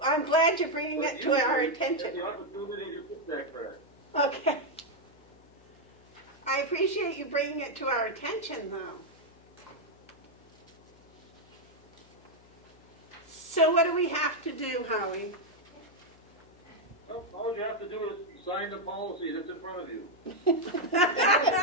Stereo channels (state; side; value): noise; left; hum, 27 dB below the sound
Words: I'm glad you're bringing it to our attention. The opportunity to fix that crack. Okay. I appreciate you bringing it to our attention, though. So what do we have to do, Howie? Well, all you have to do is sign the policy that's in front of you. Can